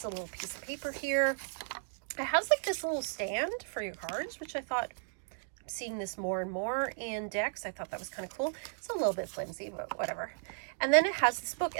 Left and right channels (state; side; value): silent; left; digital silence